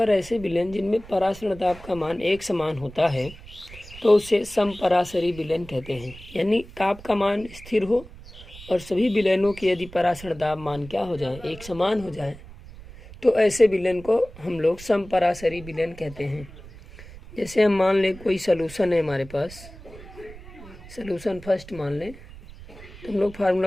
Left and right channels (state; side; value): noise; right; rumble, 17 dB below the sound